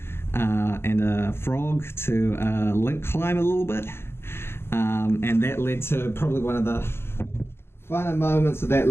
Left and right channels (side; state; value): right; late; 0.12 ms